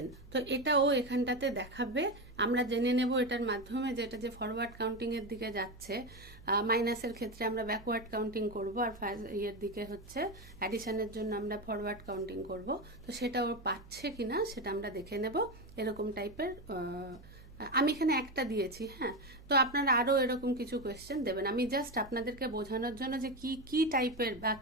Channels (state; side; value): noise; right; hum, 20 dB below the sound